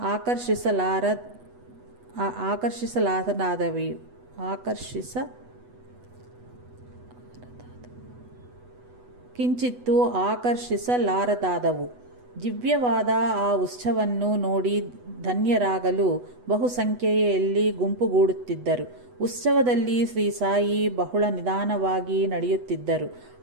ಆಕರ್ಷಿಸಲಾರದಾದವು. ದಿವ್ಯವಾದ ಆ ಉತ್ಸವವನ್ನು ನೋಡಿ ಧನ್ಯರಾಗಲು ಬಹುಸಂಖ್ಯೆಯಲ್ಲಿ ಗುಂಪುಗೂಡುತ್ತಿದ್ದರು. ಉತ್ಸವದಲ್ಲಿ ಶ್ರೀ ಸಾಯಿ ಬಹಳ ನಿಧಾನವಾಗಿ ನಡೆಯುತ್ತಿದ್ದರು.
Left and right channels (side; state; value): left; late; 8.1 ms